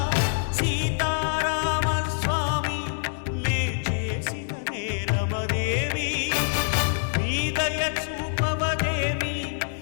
సీతారామ స్వామి నే చేసిన నేరమదేమి నీ దయ చూపవదేమి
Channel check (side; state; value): right; silent; digital silence